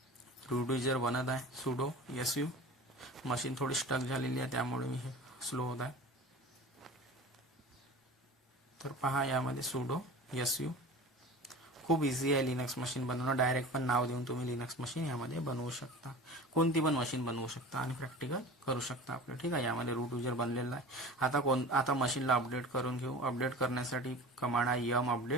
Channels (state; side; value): normal; both; correlation 0.36